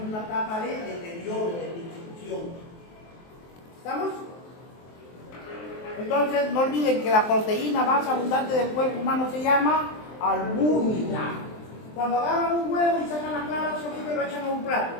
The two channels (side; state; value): right; late; 23 ms